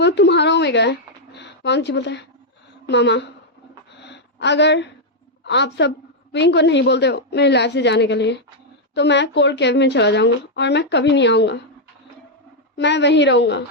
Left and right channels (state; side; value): normal; both; correlation -0.02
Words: तुम्हारा ओमेगा है। वांग जी बोलता है मामा अगर आप सब विंग को नहीं बोलते हो मेरी लाइफ से जाने के लिए तो मैं कोल्ड केव में चला जाऊंगा और मैं कभी नहीं आऊंगा, मैं वहीं रहूंगा।